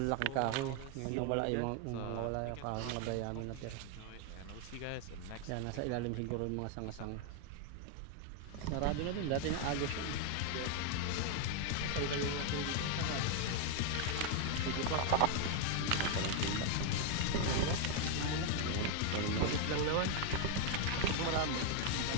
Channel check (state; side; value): different; both; correlation 0.01